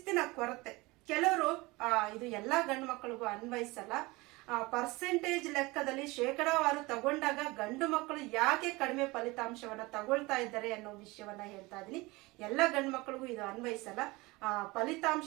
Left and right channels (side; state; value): left; quieter; 22.7 dB